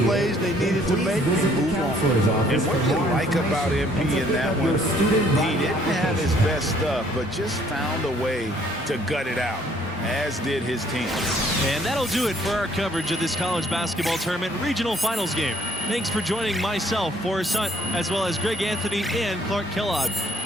plays they needed to make, and move on. And what you like about MP in that one, he didn't have his best stuff, but just found a way to gut it out, as did his team. And that'll do it for our coverage of this college basketball tournament regional finals game. Thanks for joining myself, Forrest Hunt, as well as Greg Anthony and Clark Kellogg.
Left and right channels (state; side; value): normal; both; correlation 0.62